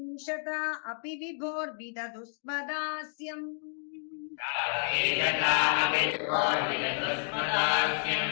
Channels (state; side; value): silent; right; digital silence